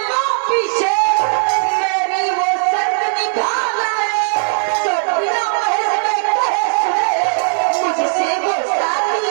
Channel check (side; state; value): left; silent; 68 dB below the other